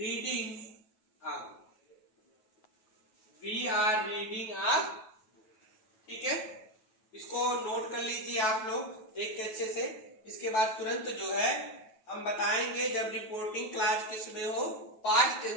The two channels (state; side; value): late; right; 9.2 ms